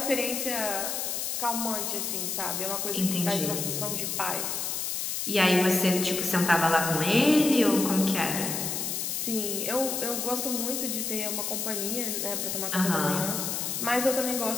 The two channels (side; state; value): left; noise; hiss, 2 dB below the sound